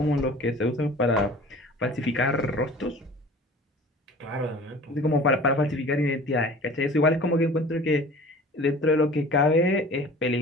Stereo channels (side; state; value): both; normal; correlation 0.43